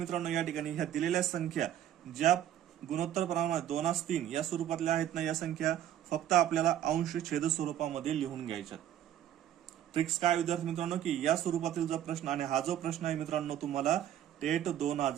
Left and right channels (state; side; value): quieter; left; 11.2 dB